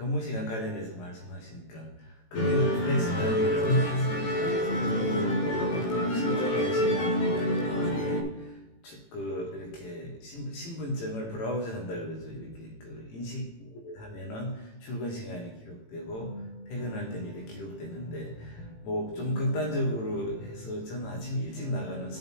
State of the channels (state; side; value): late; right; 18 ms